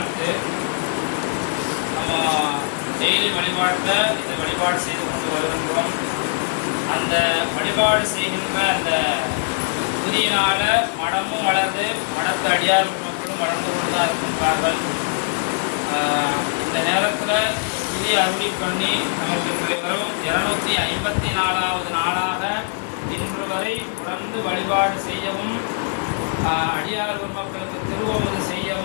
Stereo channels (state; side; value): silent; right; digital silence